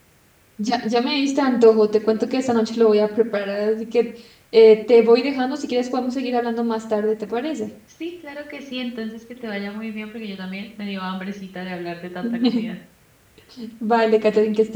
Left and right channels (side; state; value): both; identical; correlation 1.00